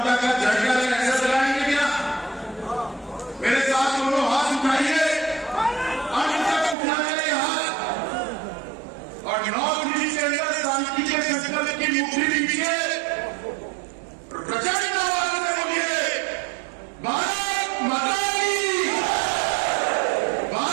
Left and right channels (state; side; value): drops out; left; at 6.8 s